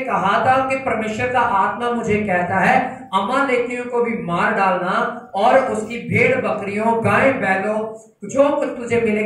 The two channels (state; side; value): identical; both; correlation 1.00